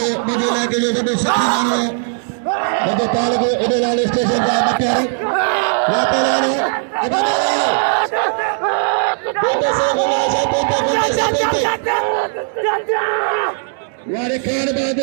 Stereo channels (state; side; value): silent; left; digital silence